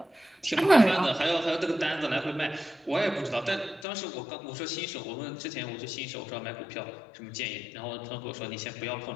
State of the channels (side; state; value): right; drops out; at 3.9 s